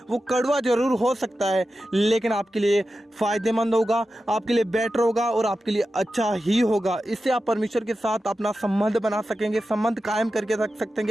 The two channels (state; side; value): normal; both; correlation 0.92